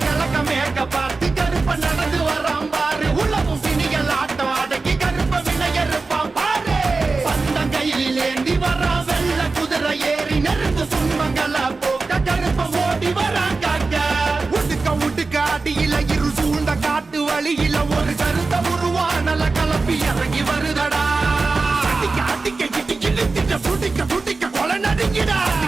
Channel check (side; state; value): left; quieter; 3.9 dB